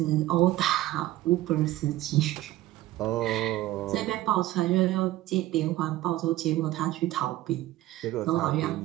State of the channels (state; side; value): quieter; left; 15.7 dB